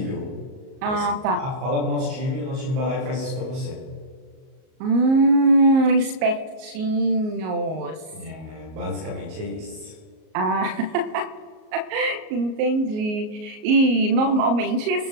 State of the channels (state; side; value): late; left; 38 ms